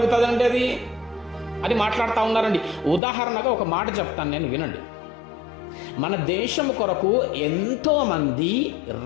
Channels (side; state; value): right; drops out; at 3.0 s